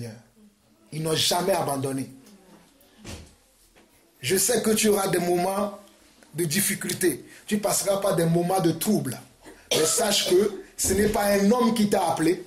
Ils n'ont jamais abandonné. Je sais que tu auras des moments de difficulté. Tu passeras par des moments de trouble. Mais sache que ce n'est pas un homme qui t'a appelé,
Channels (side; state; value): both; identical; correlation 1.00